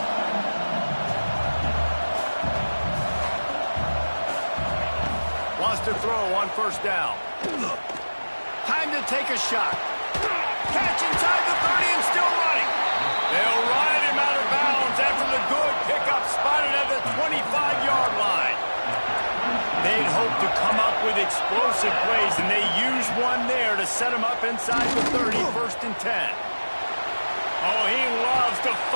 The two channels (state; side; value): inverted; both; correlation -1.00